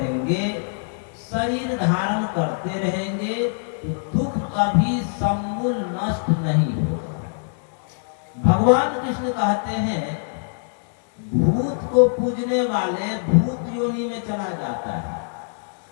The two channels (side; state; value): right; silent; digital silence